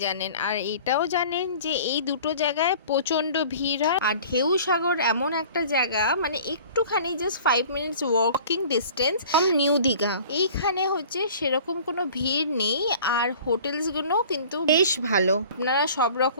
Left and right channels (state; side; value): inverted; both; correlation -0.46